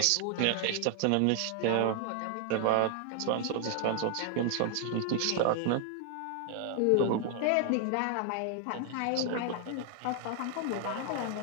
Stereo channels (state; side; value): different; both; correlation 0.00